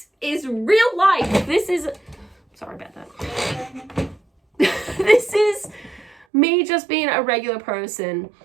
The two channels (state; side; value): drops out; left; at 6.2 s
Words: is real life. This is, sorry about that. This is me just being a regular person.